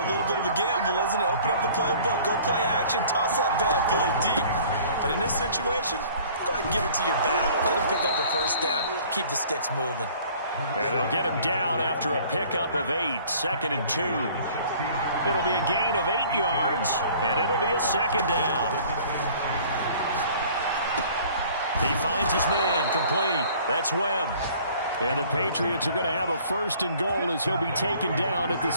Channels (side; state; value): both; inverted; correlation -0.52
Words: little bit of a gamble, isn't it? Open up the playbook, go play action, toss that bad boy deep. But in this situation, go ahead and give it to your back. Let him pick up a first down, keep the sticks moving. And they'll get him down after a pickup of 8, 2nd and 2. It'll be a gain of 8 yards, and it'll be a 2nd down. He finds his man, complete. That's Webb. And the Patriots are going to have a 1st and goal as he'll be taken down at the